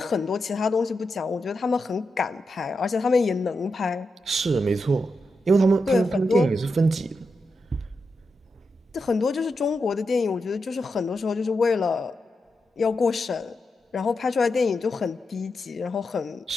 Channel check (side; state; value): both; normal; correlation 0.87